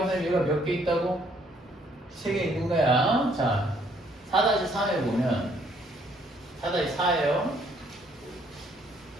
선생님 얘가 몇 개 있다고? 3개 있는 거야. 자, 4-4에 보면 4-4예요.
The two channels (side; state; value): both; normal; correlation 0.66